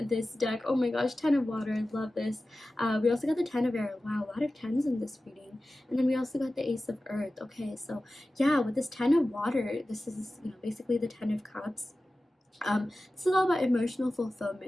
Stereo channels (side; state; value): both; normal; correlation 0.95